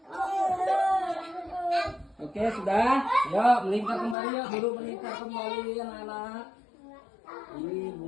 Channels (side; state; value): right; drops out; at 4.2 s